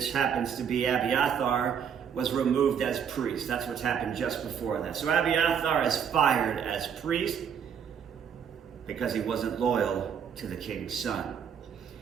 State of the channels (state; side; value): quieter; left; 7.7 dB